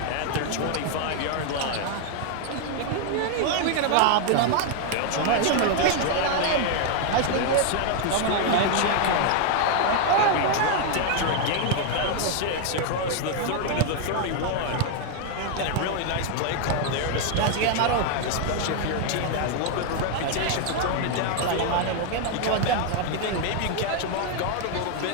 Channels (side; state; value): both; different; correlation 0.00